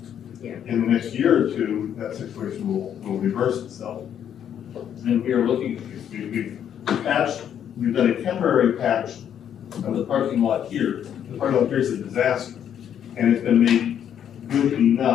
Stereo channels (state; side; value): quieter; right; 9.3 dB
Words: Yeah. In the next year or two, that situation will reverse itself. And we are looking, we've patched, we've done a temporary patch of the parking lot here. The parking lot here is a disaster, and it's been made good